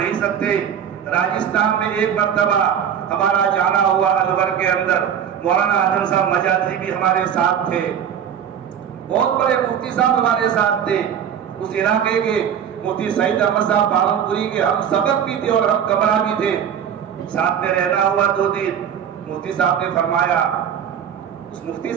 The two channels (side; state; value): left; quieter; 8.7 dB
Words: سکتے. راجستھان میں ایک مرتبہ ہمارا جانا ہوا الور کے اندر, مولانا اعظم صاحب مجاہدی بھی ہمارے ساتھ تھے, بہت بڑے مفتی صاحب ہمارے ساتھ تھے. اس علاقے کے مفتی سعید احمد صاحب بارنپوری کے ہم سبق بھی تھے اور ہم کمرہ بھی تھے, ساتھ میں رہنا ہوا 2 دن. مفتی صاحب نے فرمایا, اس مفتی